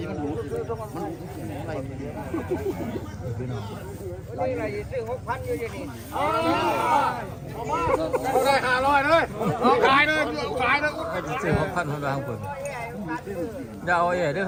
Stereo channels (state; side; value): identical; both; correlation 1.00